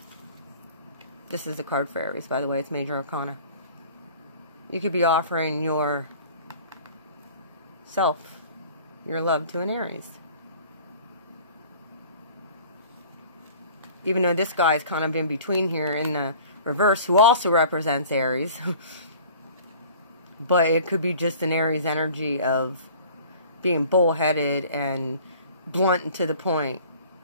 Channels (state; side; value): inverted; both; correlation -0.47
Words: This is the card for Aries, by the way. It's Major Arcana. You could be offering your self, your love to an Aries. Even though this guy's kind of in between here in the reverse, who also represents Aries. But it could be just an Aries energy of being bullheaded and blunt and to the point